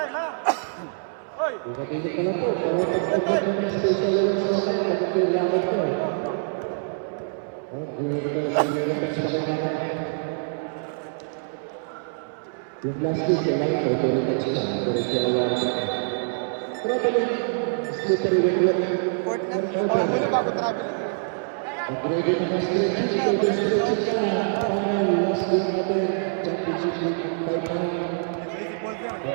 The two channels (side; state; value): left; silent; 60 dB below the other